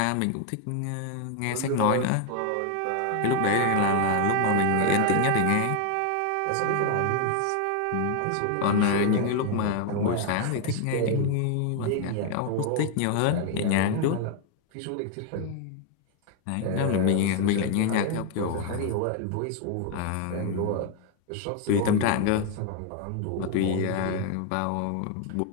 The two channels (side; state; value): both; different; correlation 0.00